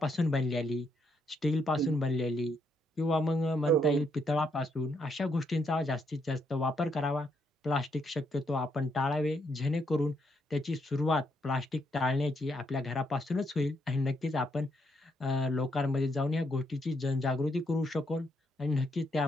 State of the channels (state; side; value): normal; both; correlation 0.76